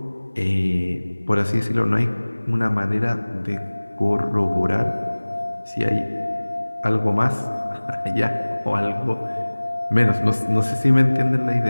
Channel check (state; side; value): inverted; both; correlation -1.00